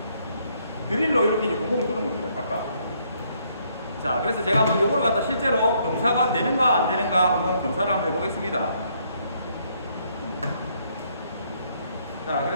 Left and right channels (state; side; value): inverted; both; correlation -0.70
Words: 드릴로 이렇게 이제 구멍을 뚫은 겁니다. 각각. 자, 그래서 제가 한번 요걸 갖다 실제로 검사가 되는가 안 되는가 한번 검사를 한번 해보겠습니다. 자,